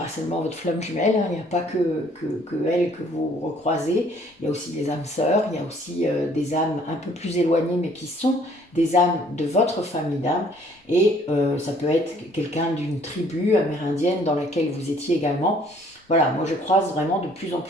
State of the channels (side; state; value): both; normal; correlation 0.60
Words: seulement votre flamme jumelle, hein, il n'y a pas que elle que vous recroisez, il y a aussi des âmes sœurs, il y a aussi des âmes un peu plus éloignées, mais qui sont des âmes de votre famille d'âmes, et ça peut être quelqu'un d'une tribu amérindienne dans laquelle vous étiez également. Voilà, moi je croise vraiment de plus en